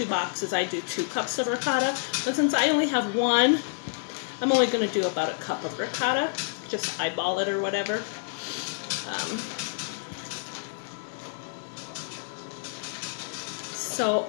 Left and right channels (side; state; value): right; silent; 59 dB below the other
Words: boxes, I do 2 cups of ricotta. But since I only have one, I'm only going to do about a cup of ricotta. Just eyeball it or whatever. So